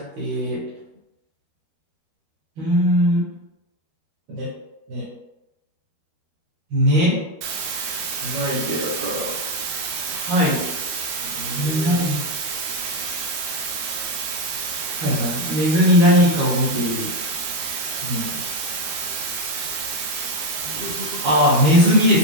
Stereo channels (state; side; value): late; left; 13 ms